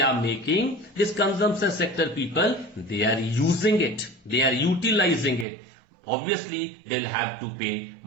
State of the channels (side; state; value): left; drops out; at 5.5 s